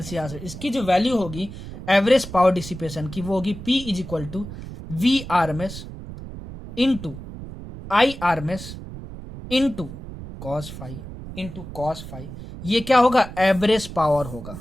सर्किट, इसकी जो वैल्यू होगी एवरेज पावर डिसिपेशन की वो होगी P is equal to V RMS into I RMS into cos phi, ये क्या होगा, एवरेज पावर होगा,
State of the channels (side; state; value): right; noise; rumble, 12 dB below the sound